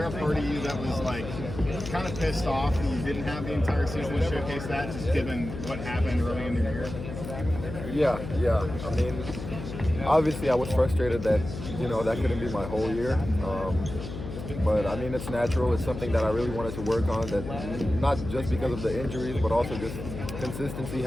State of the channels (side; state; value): left; noise; hum, 8 dB below the sound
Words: a part of you that was like kind of pissed off that you didn't have the entire season to showcase that, just given what happened early in the year? Yeah. I mean, obviously I was frustrated that, that couldn't be my whole year. But I mean, it's natural. It's something that I really wanted to work on, that not just because of the injuries, but also just consistency